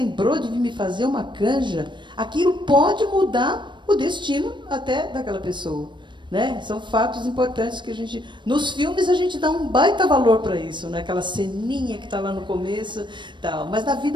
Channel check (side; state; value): left; late; 0.22 ms